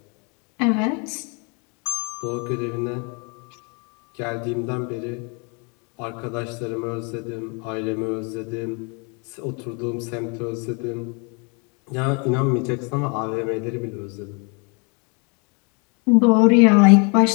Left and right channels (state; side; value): quieter; right; 34.0 dB